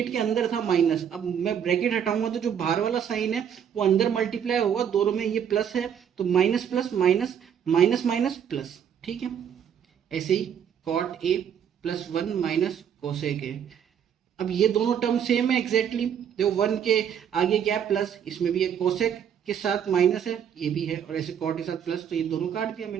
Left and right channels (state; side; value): quieter; left; 8.5 dB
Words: के अंदर था माइनस। अब मैं ब्रैकेट हटाऊंगा तो जो बाहर वाला साइन है वो अंदर मल्टीप्लाई होगा, दोनों में ये प्लस है तो minus plus minus, minus minus plus, ठीक है। ऐसे ही cot A plus one minus cosec a. अब ये दोनों टर्म सेम है एग्जैक्टली, देखो वन के आगे क्या है प्लस, इसमें भी एक कोसेक के साथ माइनस है, ये भी है, और ऐसे कॉट के साथ प्लस, तो ये दोनों काट दिया